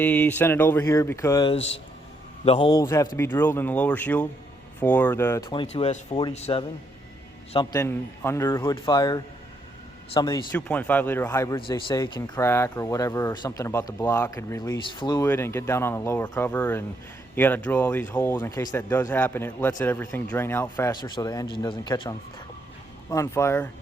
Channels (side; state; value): both; normal; correlation 0.75